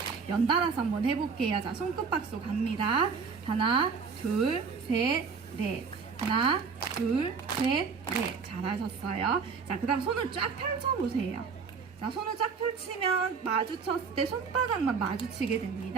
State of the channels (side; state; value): left; quieter; 5.4 dB